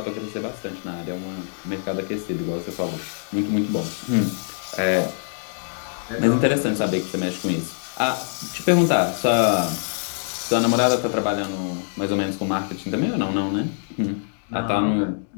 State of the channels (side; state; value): right; silent; digital silence